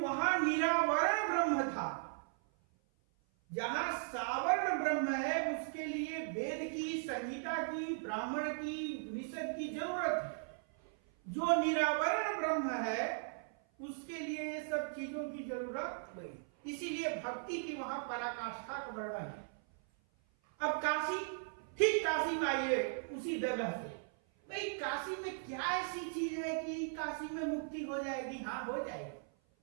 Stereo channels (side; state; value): left; silent; 53 dB below the other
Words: निरावरण ब्रह्म था। जहां सावर्ण ब्रह्म है उसके लिए वेद की, संगीता की, ब्राह्मण की, उपनिषद की जरूरत है। जो निरावरण ब्रह्म है उसके लिए ये सब चीजों की जरूरत नहीं। इसीलिए भक्ति की वहां पराकाष्ठा का वर्णन है। अब काशी, ठीक काशी में आइए उसी जगह से। भाई काशी में क्या ऐसी चीज है कि काशी में मुक्ति हो जाएगी? हाँ, हो जाएगी।